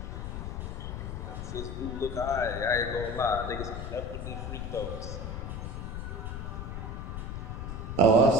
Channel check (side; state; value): left; noise; rumble, 5 dB below the sound